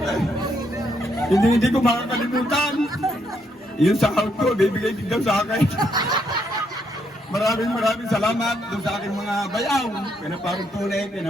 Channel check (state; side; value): normal; both; correlation 0.75